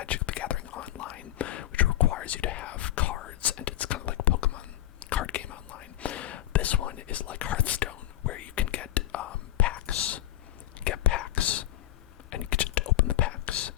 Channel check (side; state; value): right; quieter; 14.0 dB